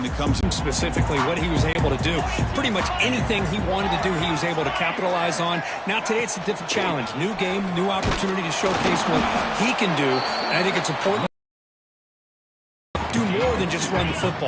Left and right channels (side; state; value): both; identical; correlation 1.00